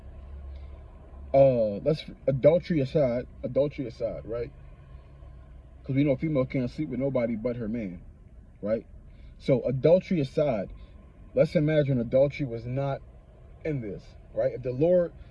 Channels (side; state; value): both; identical; correlation 1.00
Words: adultery aside, right? Because we know a female can't sleep with nobody but her man, right? So adultery aside, let's imagine adultery was not in this, right? If the Lord